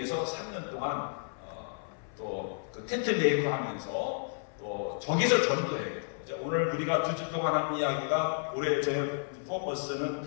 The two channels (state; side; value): silent; right; 57 dB below the other